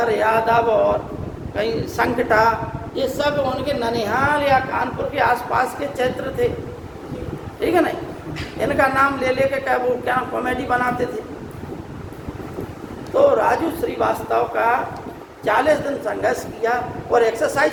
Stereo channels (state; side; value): identical; both; correlation 1.00